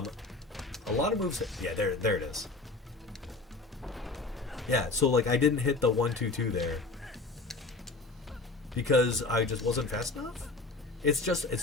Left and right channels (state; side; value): quieter; right; 3.4 dB